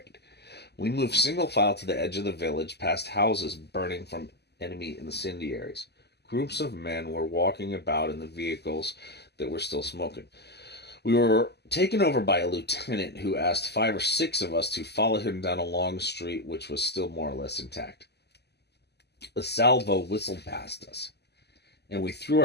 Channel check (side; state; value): right; late; 0.49 ms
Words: We moved single file to the edge of the village, past houses burning from enemy incendiaries. Groups of men were walking about in the vehicles that were still smoking. We were taken over by a lieutenant who asked 5 or 6 of us to follow him down a long street which was still more or less intact. A salvo whistled past us, and we threw